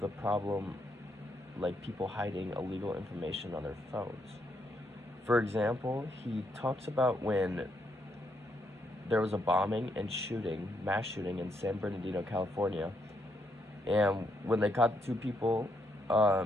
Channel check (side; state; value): both; normal; correlation 0.77